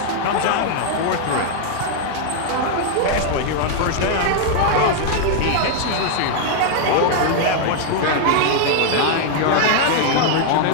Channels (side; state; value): both; different; correlation 0.00